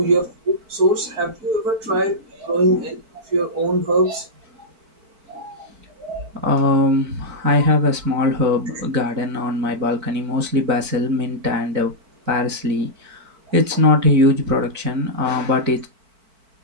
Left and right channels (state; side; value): late; left; 4.5 ms